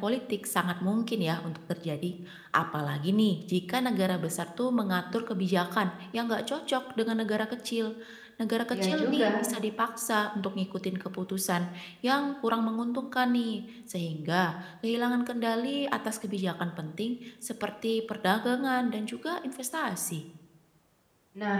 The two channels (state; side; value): identical; both; correlation 1.00